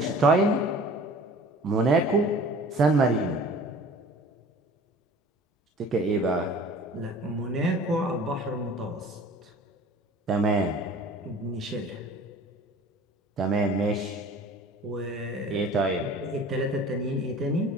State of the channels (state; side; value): normal; both; correlation 0.45